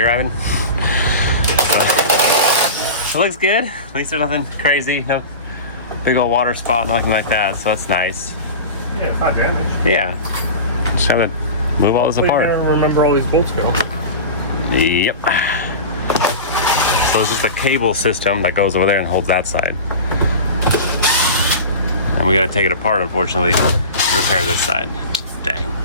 Ivan? So, it looks good. At least there's nothing crazy. No big old water spot, nothing like that. So that's nice. Yeah, it's not damaged. Yeah. Just have to move all this apart. I don't remember all these bolts go. Yep. So it's just a cable system that goes over there and holds that side. And we gotta take it apart, unfortunately, to repair this side. Dang.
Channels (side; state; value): both; inverted; correlation -0.30